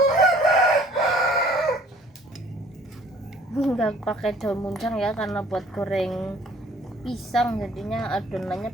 Nggak pakai daun muncang ya, karena buat goreng pisang, jadinya adonannya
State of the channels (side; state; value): both; normal; correlation 0.55